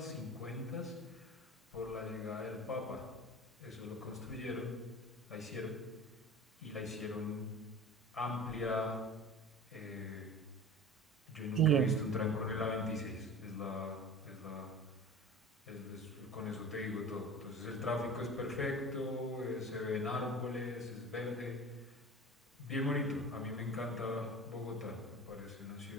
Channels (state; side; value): normal; both; correlation 0.37